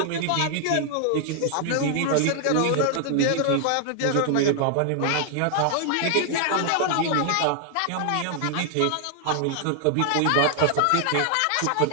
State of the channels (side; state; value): both; different; correlation 0.00